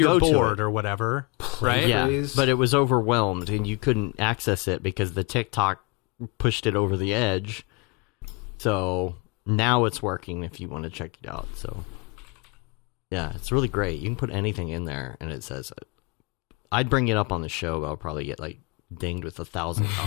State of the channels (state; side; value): quieter; right; 26.5 dB